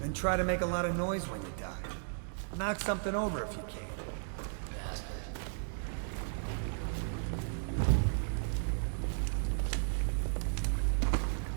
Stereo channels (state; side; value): silent; left; digital silence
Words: Then try to make a lot of noise when you die. Knock something over if you can. Bastard.